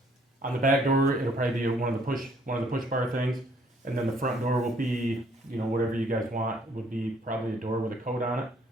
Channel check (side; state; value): both; normal; correlation 0.63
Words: on the back door, it'll probably be one of the push bar things, and then the front door will be, you know, whatever you guys want, would be probably a door with a code on it.